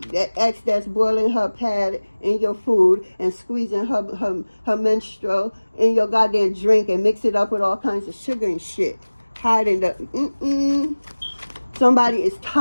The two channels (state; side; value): inverted; both; correlation -1.00